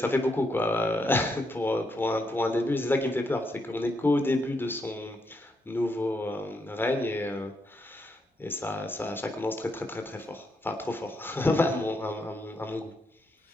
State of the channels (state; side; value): normal; both; correlation 0.79